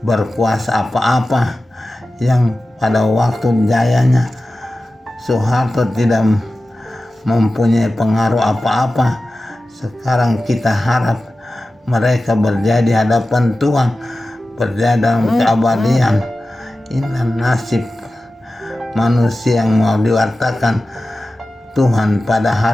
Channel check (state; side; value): normal; both; correlation 0.95